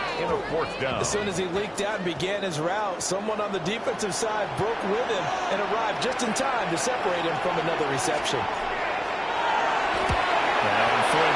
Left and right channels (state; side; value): identical; both; correlation 1.00